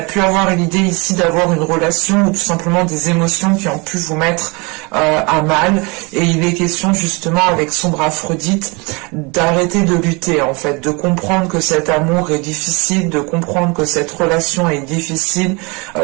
pu avoir l'idée ici d'avoir une relation ou tout simplement des émotions qui ont pu vous mettre à mal, et il est question justement avec sombre Aphrodite d'arrêter de lutter en fait, de comprendre que cet amour est difficile, de comprendre que cette relation est difficile,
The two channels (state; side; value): quieter; left; 28.3 dB